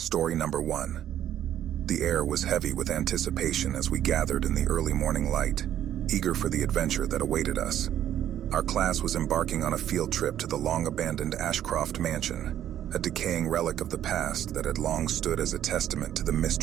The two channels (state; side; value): quieter; left; 11.1 dB